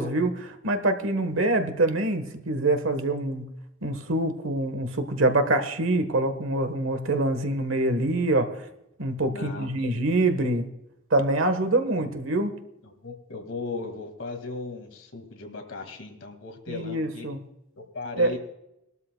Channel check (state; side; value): normal; both; correlation 0.11